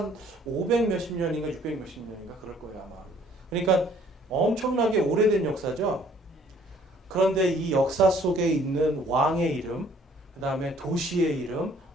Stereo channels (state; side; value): normal; both; correlation 0.59